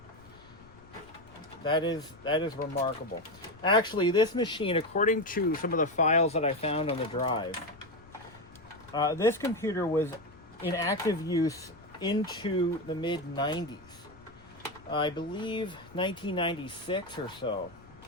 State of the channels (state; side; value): noise; left; rumble, 24 dB below the sound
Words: That is remarkable. Actually, this machine, according to some of the files that I found on the drive, this computer was in active use into the mid-90s. I believe 1996 or so.